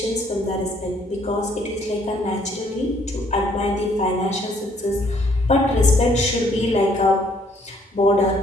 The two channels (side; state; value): both; normal; correlation 0.64